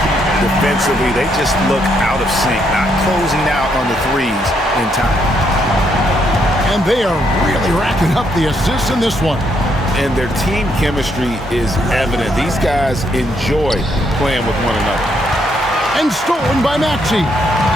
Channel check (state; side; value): normal; both; correlation 0.74